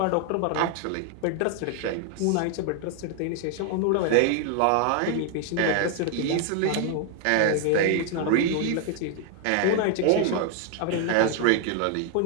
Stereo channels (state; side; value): different; both; correlation 0.00